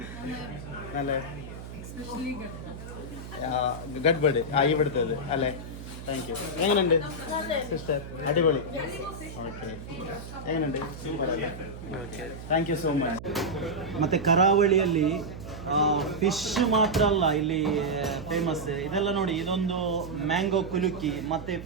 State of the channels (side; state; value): right; noise; hum, 12 dB below the sound